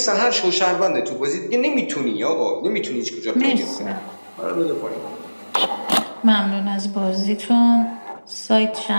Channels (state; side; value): inverted; both; correlation -1.00